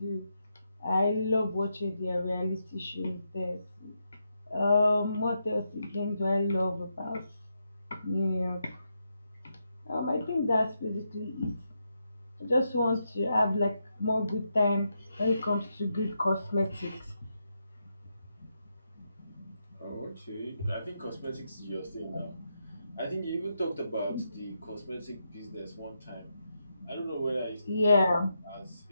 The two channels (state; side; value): inverted; both; correlation -0.83